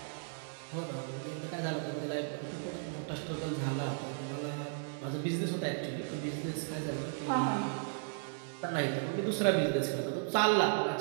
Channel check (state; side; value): silent; left; digital silence